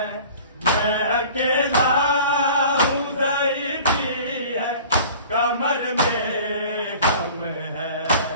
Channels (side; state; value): both; inverted; correlation -0.44